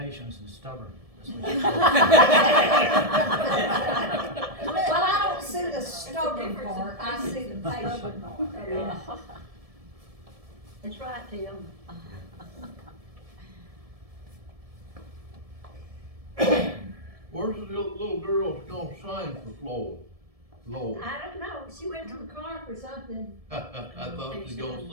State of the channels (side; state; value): left; late; 1.7 ms